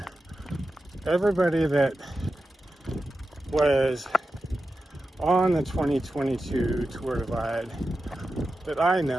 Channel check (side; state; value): both; normal; correlation 0.91